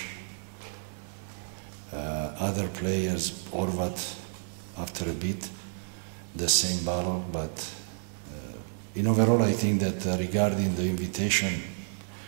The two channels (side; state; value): left; silent; 58 dB below the other